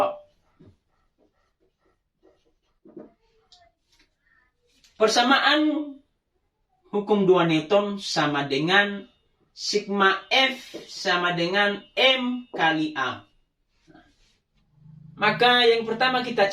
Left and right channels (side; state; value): both; identical; correlation 1.00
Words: Persamaan hukum 2 Newton sama dengan sigma F sama dengan M kali A. Maka yang pertama kita